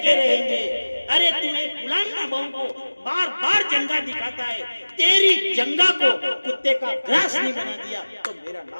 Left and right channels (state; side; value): inverted; both; correlation -1.00